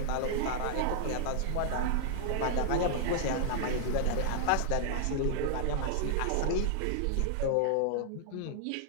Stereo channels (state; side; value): different; both; correlation -0.01